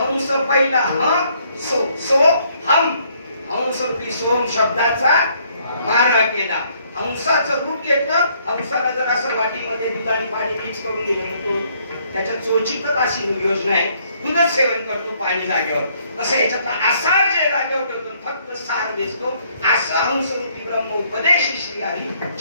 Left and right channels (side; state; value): both; inverted; correlation -0.67